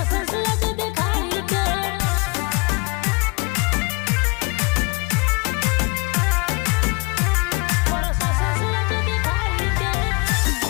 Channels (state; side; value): quieter; right; 30.5 dB